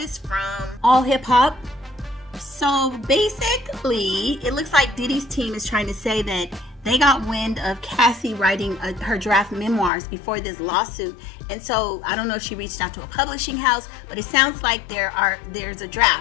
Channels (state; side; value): drops out; right; at 9.9 s